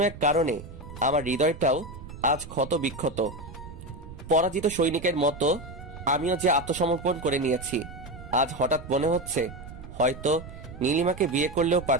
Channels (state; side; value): noise; right; rumble, 14 dB below the sound